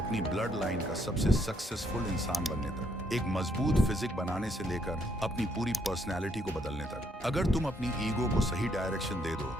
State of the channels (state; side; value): normal; both; correlation 0.71